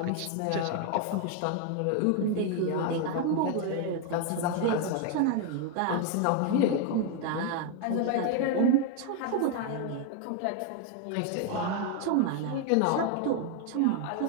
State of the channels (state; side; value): different; both; correlation 0.01